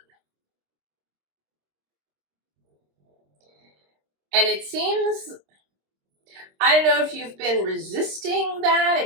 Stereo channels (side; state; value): left; late; 26 ms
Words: And it seems, I don't know if you've been resisting that,